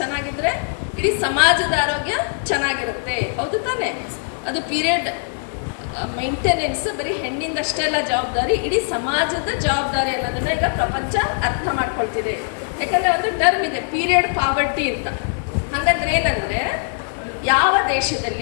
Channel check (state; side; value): silent; right; digital silence